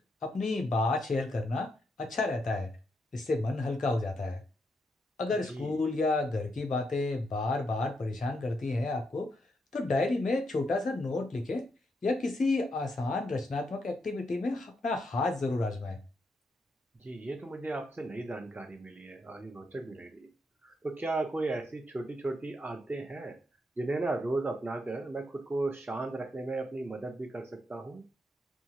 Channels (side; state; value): both; normal; correlation 0.80